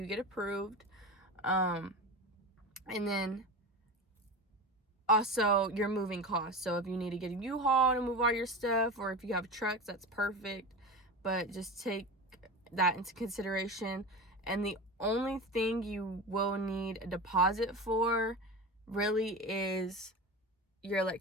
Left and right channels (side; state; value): both; normal; correlation 0.27